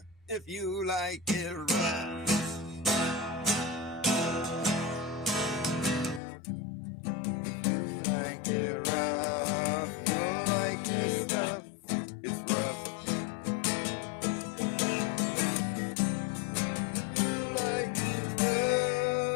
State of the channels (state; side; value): drops out; right; at 6.2 s